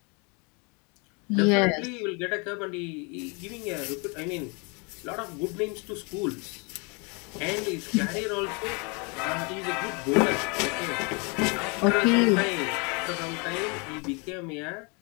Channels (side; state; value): right; quieter; 32.1 dB